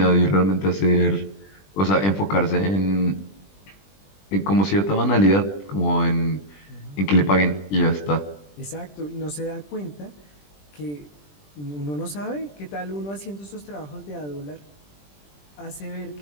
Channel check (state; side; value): late; right; 20 ms